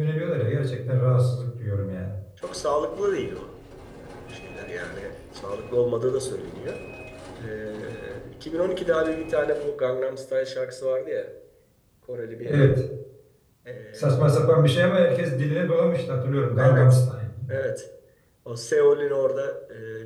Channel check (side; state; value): both; identical; correlation 1.00